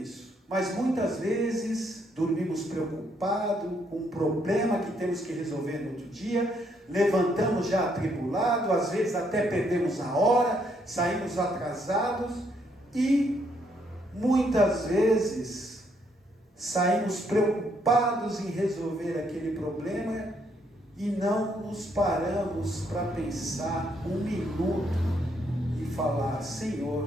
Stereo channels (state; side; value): normal; both; correlation 0.72